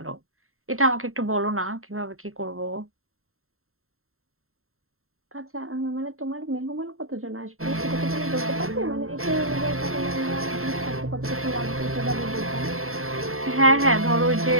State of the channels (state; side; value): late; left; 0.62 ms